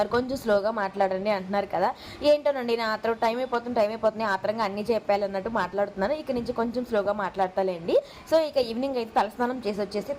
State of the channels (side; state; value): both; identical; correlation 1.00